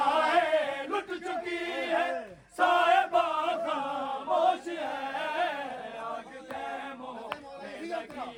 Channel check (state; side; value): identical; both; correlation 1.00